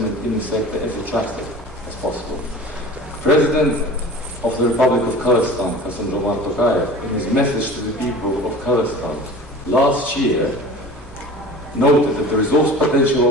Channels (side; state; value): both; normal; correlation 0.39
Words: in the sector as attractive as possible. President of the Republic of Kazakhstan, in his message to the people of Kazakhstan last year, noted that the resource potential